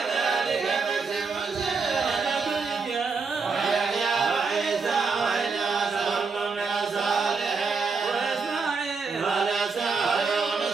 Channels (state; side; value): quieter; left; 4.7 dB